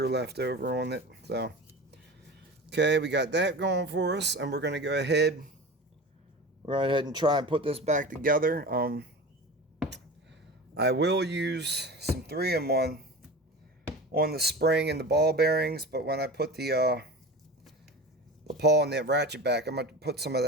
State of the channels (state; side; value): normal; both; correlation 0.32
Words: left over on it. So okay, we got that going for us, and we're going to go ahead and try and put this back together. I will use some 3-in-1 on the spring and the ball bearings, but when I put the pawl and the ratchet back, I'm going to put some of